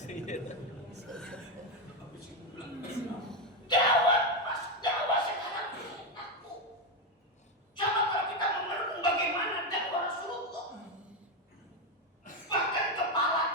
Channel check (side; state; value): both; normal; correlation 0.08